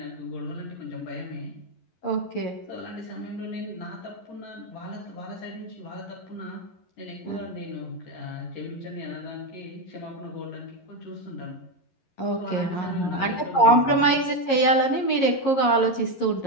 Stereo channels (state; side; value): late; right; 11 ms